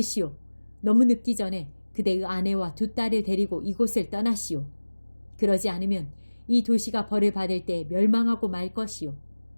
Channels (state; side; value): inverted; both; correlation -1.00